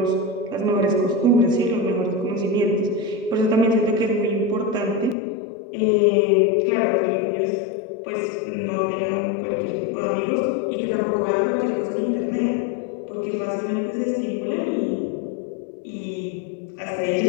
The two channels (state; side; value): drops out; right; at 5.2 s